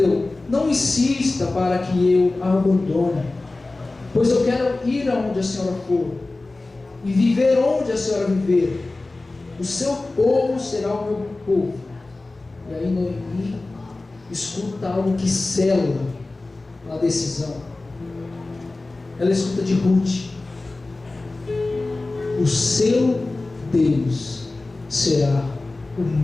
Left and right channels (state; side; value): quieter; right; 3.2 dB